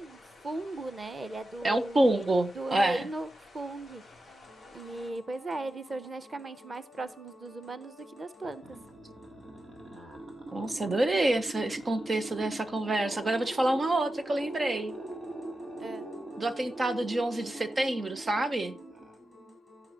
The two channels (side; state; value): both; normal; correlation 0.91